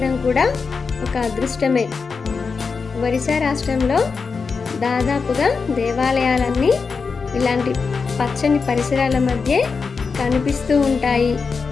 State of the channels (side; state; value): right; quieter; 5.0 dB